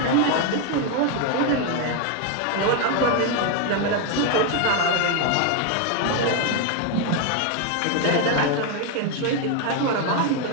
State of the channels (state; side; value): different; both; correlation 0.01